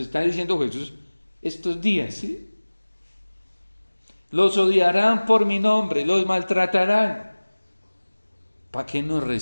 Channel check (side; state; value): both; inverted; correlation -1.00